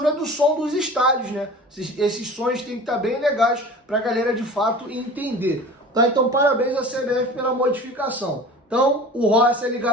do som dos estádios, né? Esses sons têm que estar bem legais para a galera de fato entender. Tá? Então parabéns à CBF pela modificação. Então o Rossi ele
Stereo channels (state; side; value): normal; both; correlation 0.39